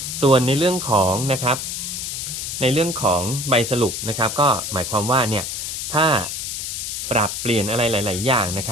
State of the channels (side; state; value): left; noise; hiss, 4 dB below the sound